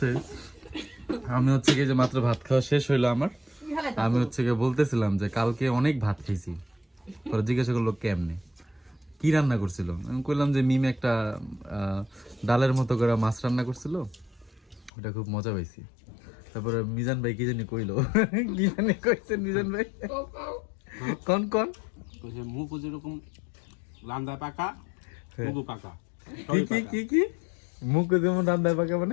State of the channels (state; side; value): drops out; right; at 14.9 s